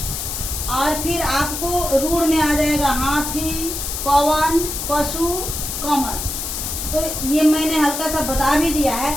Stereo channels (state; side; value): noise; left; hiss, 4 dB below the sound